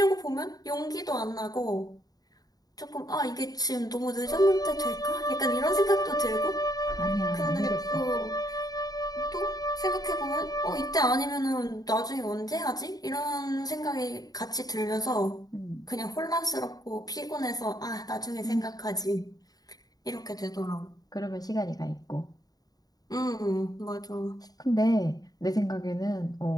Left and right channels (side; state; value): right; late; 0.18 ms